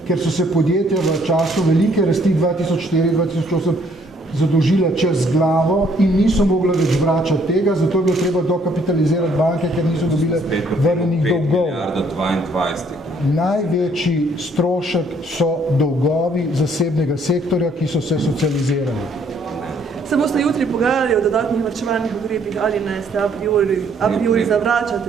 ker so se podjetja v času velike rasti 2004-2008 zadolžila čez glavo in niso mogla več vračati tega, zato je bilo treba dokapitalizirati banke, ker niso dobile vrnenih dolgov. 5,22 Največji strošek so dolgovi zasebnega sektorja, ki so se socializirali. Se boste jutri pogajali o dodatnih varčevalnih ukrepih ali ne, ste a priori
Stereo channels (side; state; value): both; normal; correlation 0.65